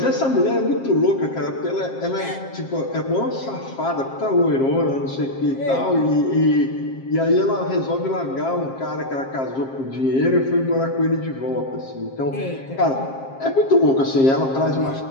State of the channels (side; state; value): right; late; 7.5 ms